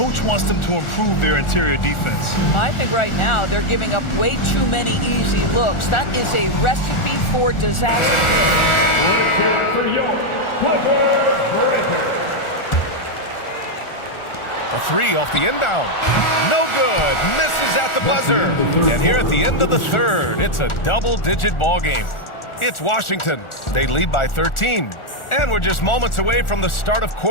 wants them to improve their interior defense. I think right now they're giving up way too many easy looks. That is a recipe for disaster. Let's hear it for your Clippers breaker. A three off the inbound. No good. Misses at the buzzer. And here at the end of the third, it's a double-digit ball game. It's Washington. They lead by 13. And we're just moments away from the start of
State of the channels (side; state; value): right; late; 1.4 ms